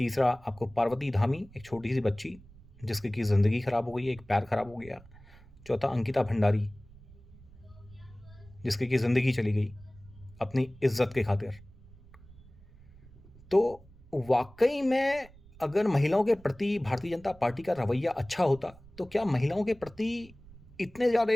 आपको पार्वती धामी, एक छोटी सी बच्ची जिसकी की ज़िंदगी ख़राब हो गई, एक पैर ख़राब हो गया, चौथा अंकिता भंडारी जिसकी की ज़िंदगी चली गई अपनी इज्जत के खातिर। तो वाकई में अगर महिलाओं के प्रति भारतीय जनता पार्टी का रवैया अच्छा होता, तो क्या महिलाओं के प्रति इतने ज़्यादा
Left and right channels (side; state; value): right; noise; rumble, 22 dB below the sound